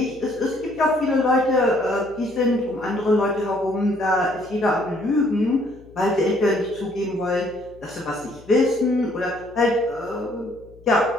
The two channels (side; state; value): left; noise; hum, 24 dB below the sound